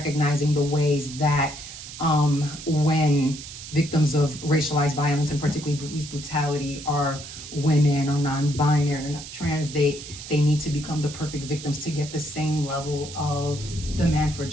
the ways that when victims of racialized violence, and particularly police brutality, are women or non-binary or not trans, they need to become the perfect victims to get the same level of demand for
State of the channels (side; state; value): right; noise; hiss, 12 dB below the sound